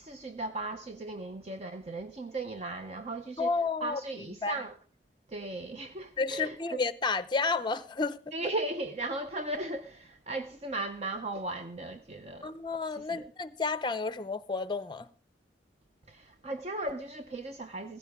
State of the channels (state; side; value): normal; both; correlation 0.19